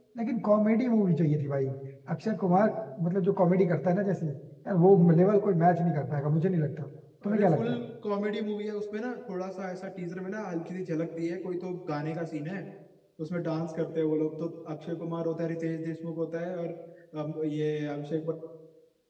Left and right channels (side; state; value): both; identical; correlation 1.00